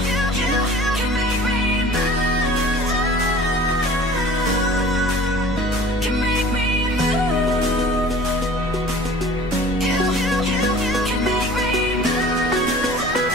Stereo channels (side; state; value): left; noise; rumble, 14 dB below the sound